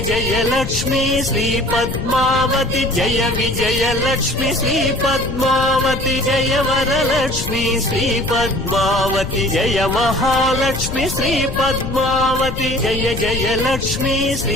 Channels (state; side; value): noise; left; rumble, 6 dB below the sound